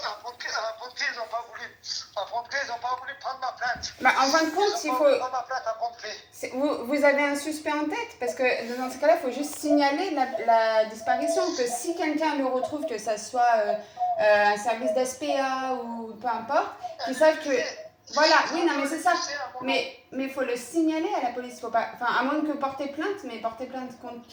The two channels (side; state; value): both; identical; correlation 1.00